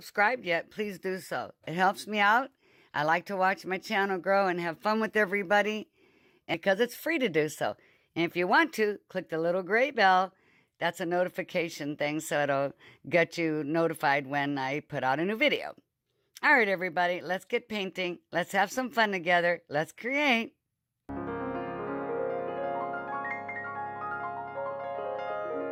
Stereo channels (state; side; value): identical; both; correlation 1.00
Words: yet, please do so. It helps me out. I like to watch my channel grow and have fun with everybody, because it's free to do so. And if you want to, click the little gray bell. That's a notification thing, so it'll get you notified when I put out a new video. All right, everybody, let's get painting. Let's have some fun together. Let's create.